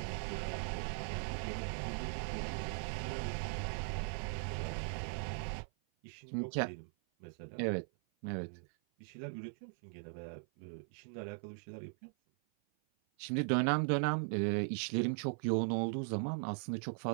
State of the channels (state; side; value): silent; left; 52 dB below the other